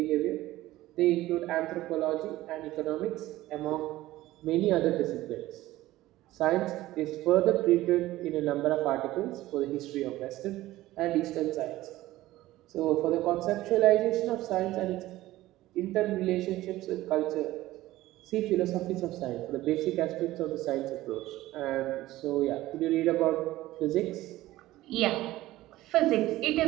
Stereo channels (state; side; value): quieter; left; 16.4 dB